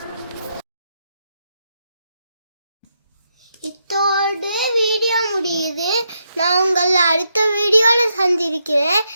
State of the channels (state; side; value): inverted; both; correlation -0.81